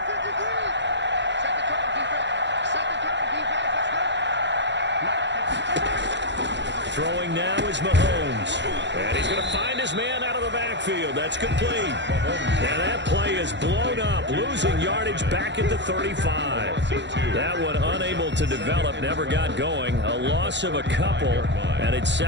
Throwing now is Mahomes. And he's going to find his man out of the backfield. That's complete. And that play is blown up, losing yardage back at the 35. That one unable to develop, never got going. A loss of a couple, and it's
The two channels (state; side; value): late; left; 0.52 ms